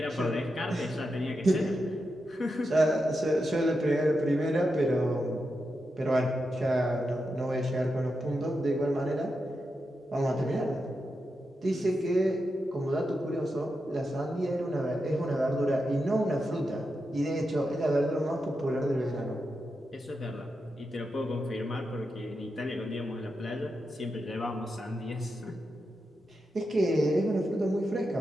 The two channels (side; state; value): both; normal; correlation 0.87